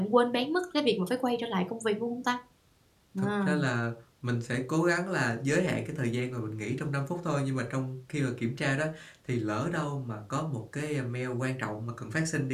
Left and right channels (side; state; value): both; identical; correlation 1.00